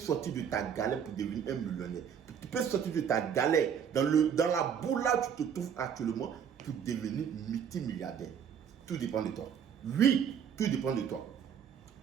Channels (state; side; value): quieter; left; 7.9 dB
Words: de ta galère pour devenir un millionnaire. Tu peux sortir de ta galère dans la boue là où tu te trouves actuellement pour devenir multimilliardaire. Tout dépend de toi. Oui, tout dépend de toi.